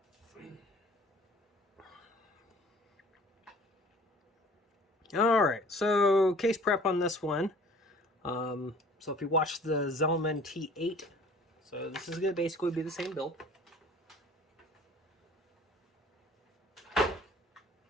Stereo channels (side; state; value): both; normal; correlation 0.49